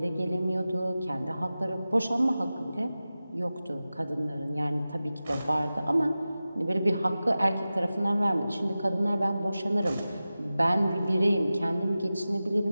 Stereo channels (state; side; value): inverted; both; correlation -0.95